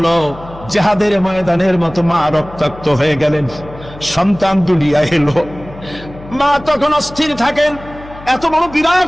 জিহাদের ময়দানের মতো মা রক্তাক্ত হয়ে গেলেন, সন্তান দুনিয়ায় এলো। মা তখন অস্থির থাকেন, এত বড়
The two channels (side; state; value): left; noise; hum, 17 dB below the sound